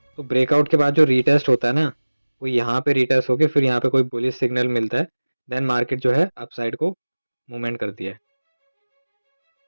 तो ब्रेकआउट के बाद जो रीटेस्ट होता है ना, वो यहाँ पे रीटेस्ट होके फिर यहाँ पे कोई बुलिश सिग्नल मिलता है, देन मार्केट जो है अपसाइड को मूवमेंट करती है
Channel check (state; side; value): inverted; both; correlation -1.00